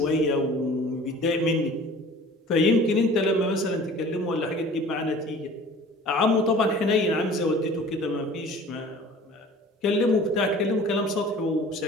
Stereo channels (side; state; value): both; normal; correlation 0.45